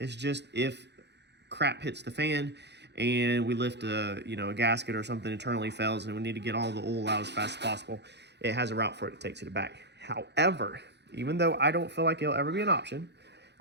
just if crap hits the fan and we lift a gasket or something internally fails and we need to get all the oil out as fast as possible, it has a route for it to take to the back. However, even though I don't feel like it'll ever be an option,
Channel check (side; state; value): left; late; 0.50 ms